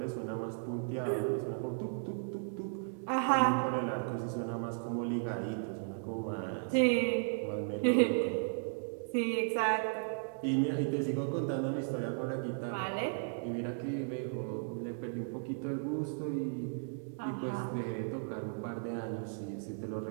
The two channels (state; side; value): silent; left; digital silence